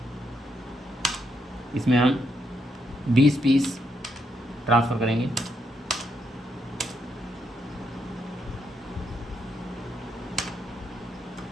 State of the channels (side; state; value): both; normal; correlation 0.78